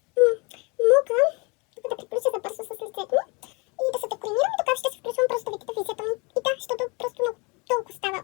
мога да приключа за бързо с лицето и да се декорирам и тогава ще се включвам просто да видите визията ми. И да, защото просто много дълго става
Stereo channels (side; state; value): right; quieter; 29.8 dB